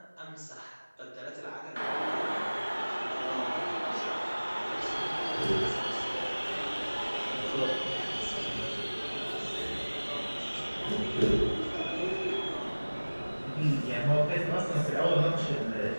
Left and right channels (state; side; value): inverted; both; correlation -1.00